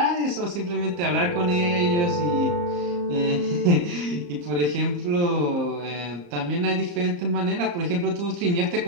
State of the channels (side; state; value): left; late; 34 ms